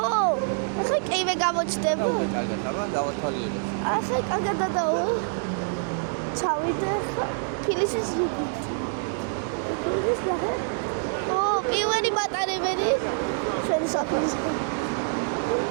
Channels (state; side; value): silent; left; digital silence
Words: კივე გამოჩდება. კარგად, აბა დავათვალიერებ. ახლა კარგად დადაო. ჩავიდე ფილისის ზუგი. ფილის ნახე. პირველი მატარებელი. შენი საფრის.